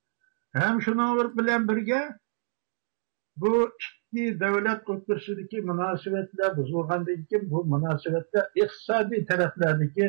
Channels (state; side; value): silent; left; 60 dB below the other